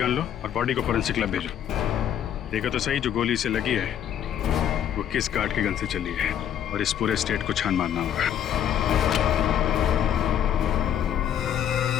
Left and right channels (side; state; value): right; quieter; 9.9 dB